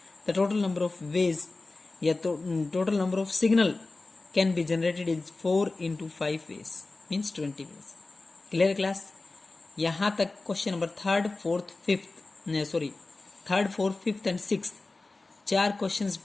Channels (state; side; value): quieter; right; 3.4 dB